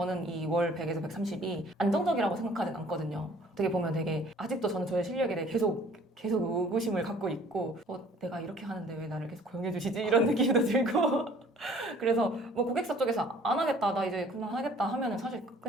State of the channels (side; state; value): both; normal; correlation 0.54